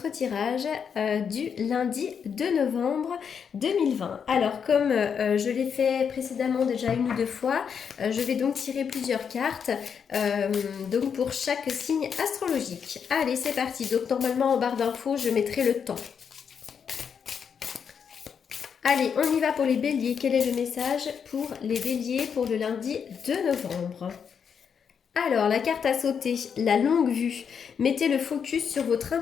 tirage du lundi 2 novembre 2020. Alors comme je l'ai fait précédemment déjà une ou deux fois, je vais donc tirer plusieurs cartes donc pour chaque signe astrologique. Allez, c'est parti. Donc normalement en barre d'infos, je mettrai le temps. Allez, on y va pour les béliers. Quel est le message pour les béliers pour le lundi 2 novembre? Alors, la carte à sauter, la longue vue. Mettez le focus sur votre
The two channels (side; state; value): right; quieter; 7.0 dB